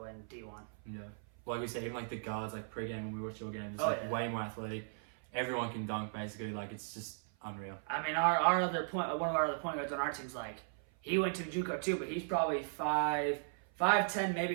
and D1. Yeah. Like we said, even like the guards, like pre-game when we watch your games, it's way more athletic. Everyone can dunk basically. Like it's just unreal. I mean, one of our other point guards on our team's like he went to Juco too, but he's probably 5'10", maybe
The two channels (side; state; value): left; silent; 53 dB below the other